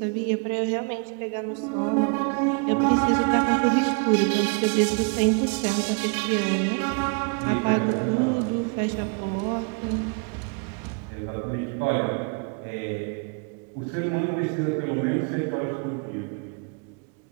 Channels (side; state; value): left; quieter; 36.0 dB